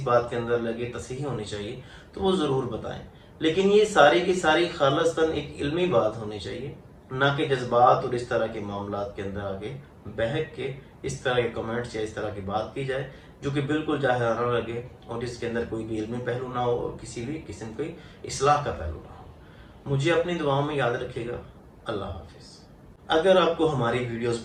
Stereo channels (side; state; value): both; identical; correlation 1.00